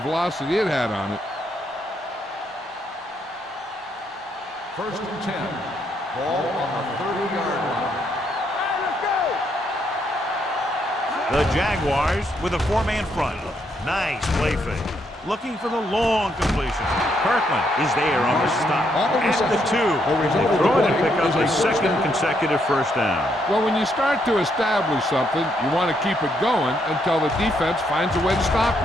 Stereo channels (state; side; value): normal; both; correlation 0.75